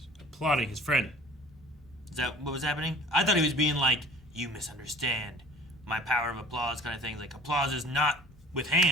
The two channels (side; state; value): both; normal; correlation 0.46